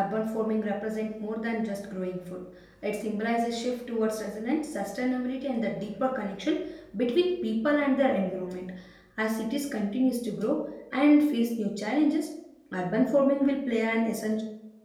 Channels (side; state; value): both; identical; correlation 1.00